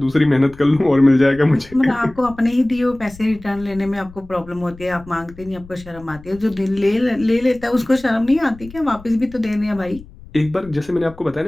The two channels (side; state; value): left; noise; rumble, 20 dB below the sound